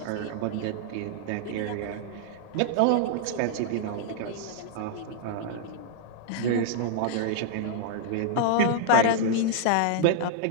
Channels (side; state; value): both; different; correlation -0.01